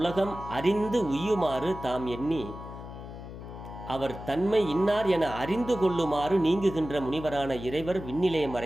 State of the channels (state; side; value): noise; left; hum, 12 dB below the sound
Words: அறிந்து உய்யுமாறு தாம் எண்ணி அவர் தன்மை இன்னார் என அறிந்து கொள்ளுமாறு நீங்குகின்ற முனிவரான இறைவர் விண்ணிலே